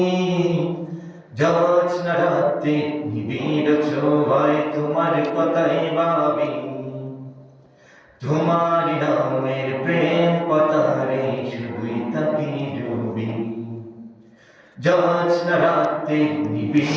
জ্যোৎস্না রাতে নিবিড় ছোঁয়ায় তোমার কথাই ভাবি, তোমার নামের প্রেম পতারে শুধুই তাকে ডুবি। জ্যোৎস্না রাতে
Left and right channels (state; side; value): identical; both; correlation 1.00